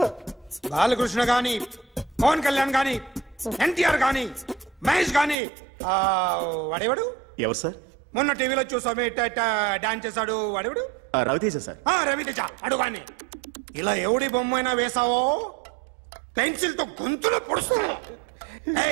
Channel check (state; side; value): drops out; left; at 5.4 s